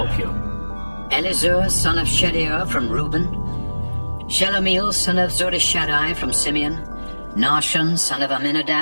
you. Elizur, son of Shedeur from Reuben, Shelomiel, son of Zurishaddai from Simeon, Nahshon, son of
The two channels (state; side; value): inverted; both; correlation -1.00